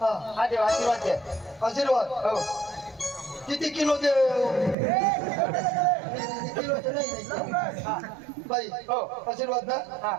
हा हा देवा आशीर्वाद द्या. आशीर्वाद हो किती किलो दे किलोचे नाही बाई हो आशीर्वाद ना हा.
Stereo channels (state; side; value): drops out; left; at 4.8 s